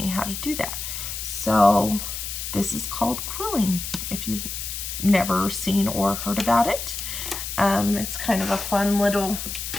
how to do that. So this is called quilling, if you've never seen or heard about it. It's kind of a fun little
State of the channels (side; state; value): left; noise; hiss, 6 dB below the sound